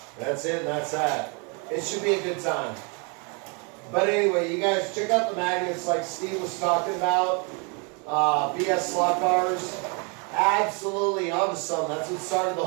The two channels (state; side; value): quieter; left; 34.3 dB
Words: That's it, and that's that. It should be a good time. But anyway, you guys check out the magnets like Steve was talking about. BS slot cars. Absolutely onto something. That's what started the